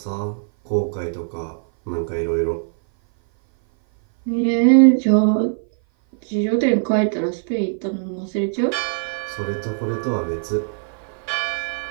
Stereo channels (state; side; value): silent; left; 57 dB below the other